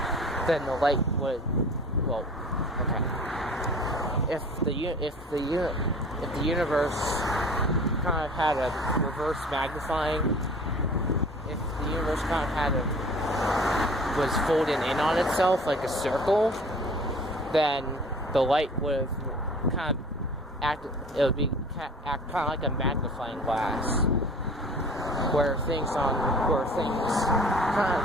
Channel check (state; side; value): normal; both; correlation 0.45